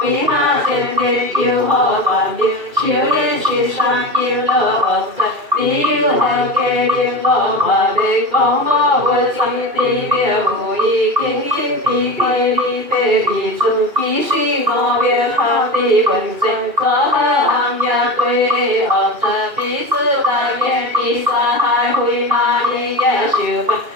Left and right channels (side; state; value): left; late; 2.5 ms